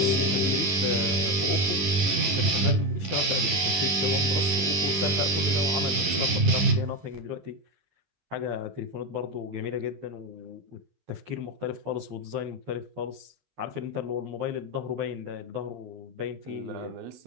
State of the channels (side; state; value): left; late; 11 ms